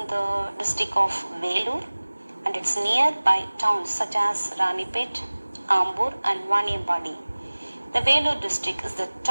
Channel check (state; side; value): inverted; both; correlation -1.00